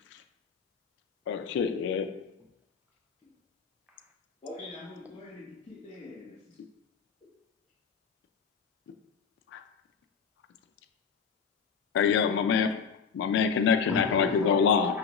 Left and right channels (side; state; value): right; quieter; 6.2 dB